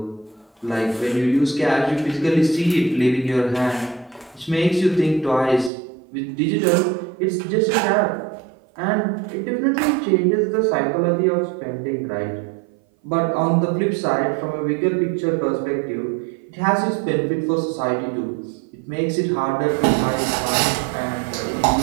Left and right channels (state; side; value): drops out; left; at 5.7 s